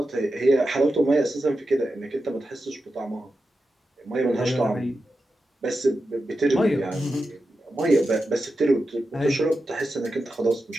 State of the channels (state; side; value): normal; both; correlation 0.90